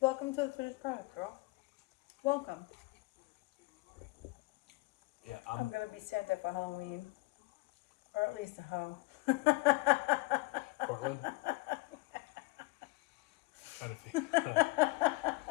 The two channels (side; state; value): right; quieter; 22.3 dB